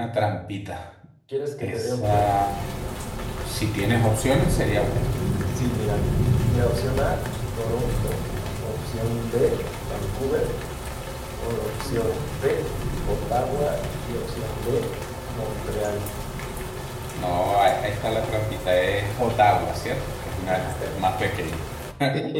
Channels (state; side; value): identical; both; correlation 1.00